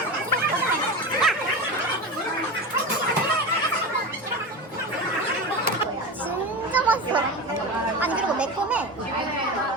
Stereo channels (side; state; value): both; normal; correlation 0.24